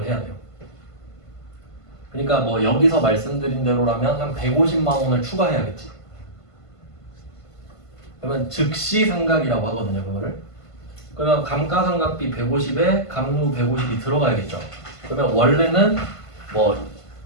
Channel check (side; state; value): right; late; 1.5 ms